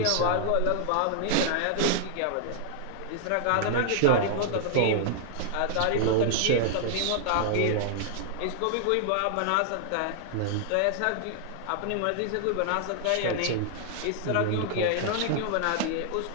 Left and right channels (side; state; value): both; different; correlation -0.01